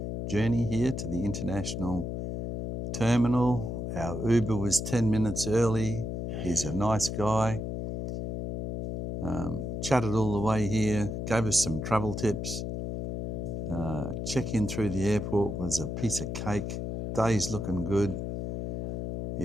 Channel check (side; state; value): left; noise; hum, 3 dB below the sound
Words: journey here to the international terminal. Our Uber was 10 minutes early. He's a nice guy. Chatted all the way here, gave us some travel tips. Check-in through the airport was a piece of cake. Day's looking good.